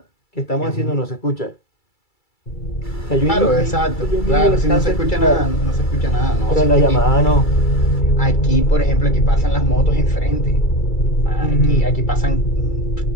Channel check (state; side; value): late; right; 2.3 ms